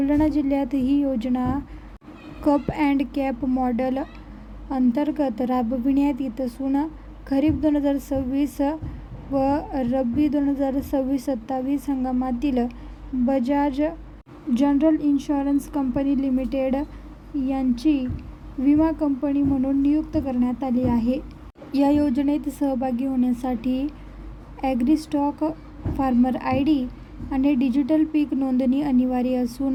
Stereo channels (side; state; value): both; identical; correlation 1.00